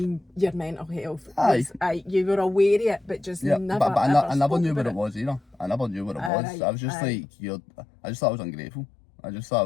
your mental health. Aye. You were aware of it, but just never. But I never knew what it was either. I never knew what it was. Right. I was just like, I just thought I was ungrateful. I just thought I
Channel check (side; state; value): right; drops out; at 6.3 s